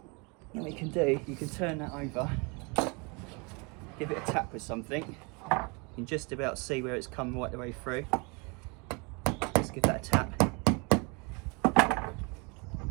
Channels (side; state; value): left; quieter; 30.7 dB